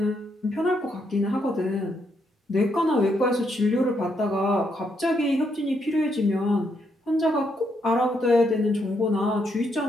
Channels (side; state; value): both; normal; correlation 0.77